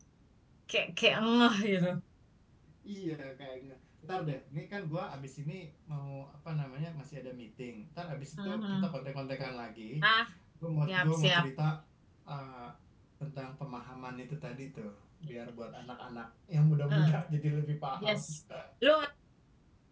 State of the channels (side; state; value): both; identical; correlation 1.00